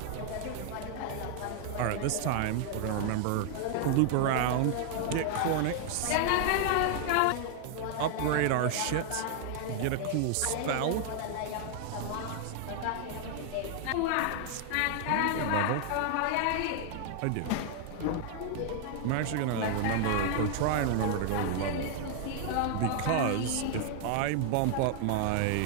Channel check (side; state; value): both; different; correlation 0.00